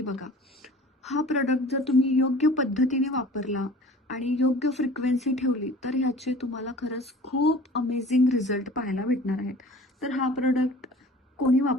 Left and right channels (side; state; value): both; normal; correlation 0.44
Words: बघा. हा प्रोडक्ट जर तुम्ही योग्य पद्धतीने वापरला आणि योग्य फ्रिक्वेन्सी ठेवली तर ह्याचे तुम्हाला खरंच खूप अमेझिंग रिझल्ट पाहायला भेटणार आहेत. तर हा प्रोडक्ट कोणी